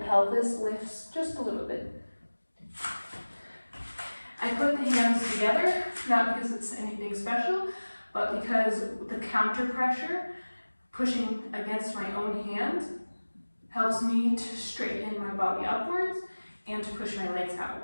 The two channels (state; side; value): inverted; both; correlation -1.00